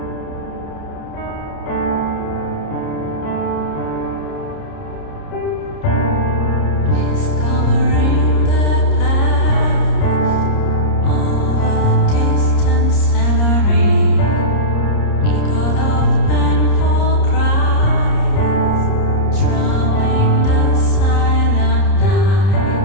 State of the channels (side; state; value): right; late; 30 ms